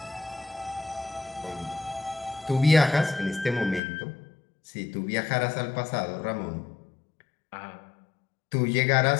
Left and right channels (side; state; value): right; drops out; at 3.8 s